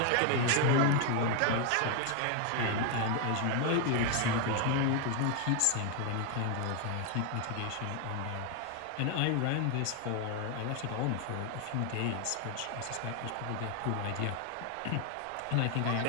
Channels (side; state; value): both; different; correlation 0.01